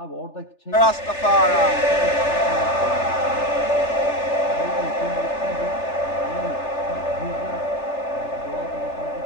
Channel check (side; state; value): right; late; 3.4 ms